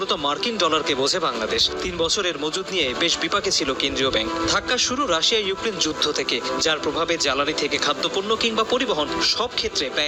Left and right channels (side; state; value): both; identical; correlation 1.00